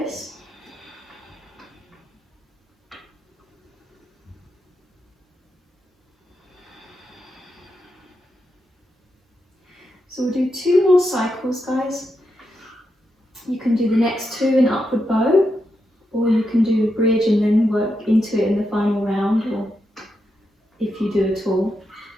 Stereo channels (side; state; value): both; normal; correlation 0.85